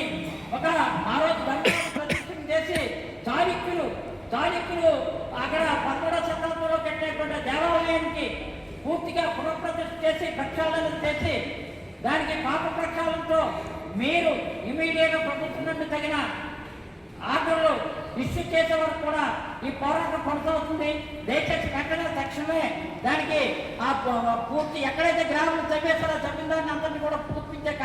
ఆ రోజు ధర్మాన్ని ప్రతిష్ఠ చేసి చాళుక్యులు అక్కడ 11వ శతాబ్దంలో కట్టినటువంటి దేవాలయానికి పూర్తిగా పునఃప్రతిష్ఠ చేసి ప్రక్షాళన చేసి దానికి పాప ప్రక్షాళనతో మీరు ఇమీడియట్గా ప్రభుత్వం నుండి తగిన ఆర్డర్లు ఇష్యూ చేసే వరకు కూడా ఈ పోరాటం కొనసాగుతుంది. దయచేసి వెంటనే తక్షణమే దానికి ఆ పూర్తి ఎక్కడైతే గ్రామాలు చంపేస్తారో చంపిన దాన్ని అందరినీ కూడా పూర్తించే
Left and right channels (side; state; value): both; identical; correlation 1.00